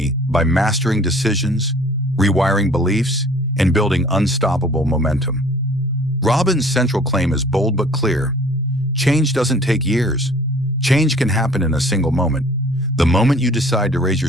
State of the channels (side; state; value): both; normal; correlation 0.51